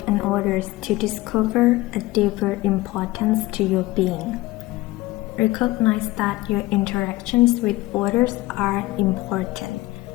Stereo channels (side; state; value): right; quieter; 19.2 dB